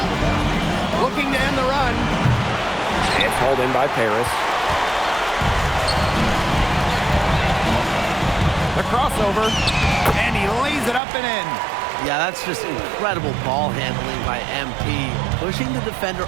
Looking to end the run. It's hauled in by Paris. The crossover. And he lays it up and in. Yeah, that's just incredible ball handling by MP, pushing the defender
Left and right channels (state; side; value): drops out; left; at 11.0 s